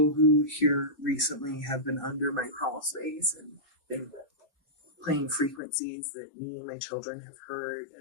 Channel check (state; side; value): drops out; right; at 5.6 s